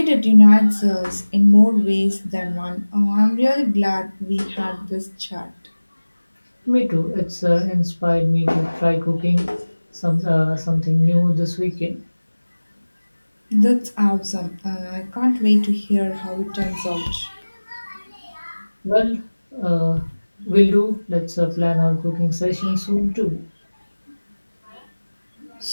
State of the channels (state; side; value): inverted; both; correlation -1.00